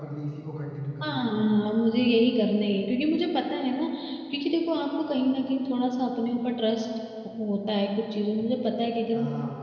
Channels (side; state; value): both; identical; correlation 1.00